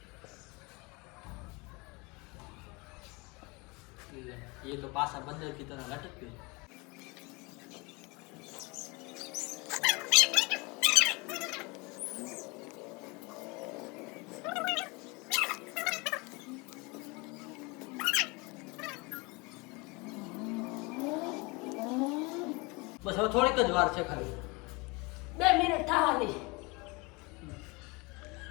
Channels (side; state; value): right; quieter; 26.9 dB